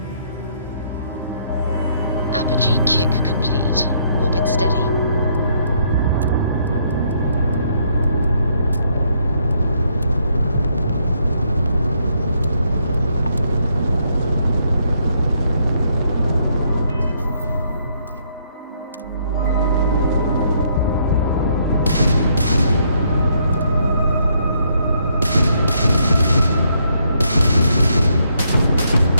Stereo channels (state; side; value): inverted; both; correlation -0.72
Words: Apogee kick complete. Orbit steady.